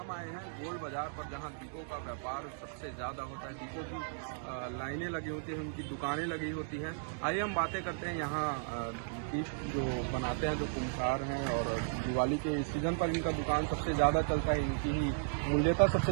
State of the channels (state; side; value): silent; left; digital silence